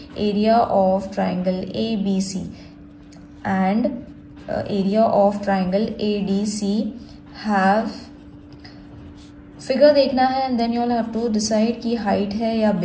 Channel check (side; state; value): both; identical; correlation 1.00